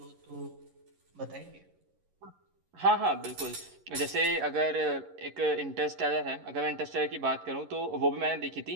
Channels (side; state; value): left; late; 11 ms